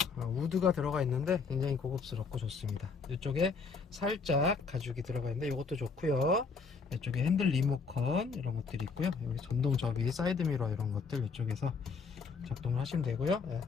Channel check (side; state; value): right; quieter; 4.8 dB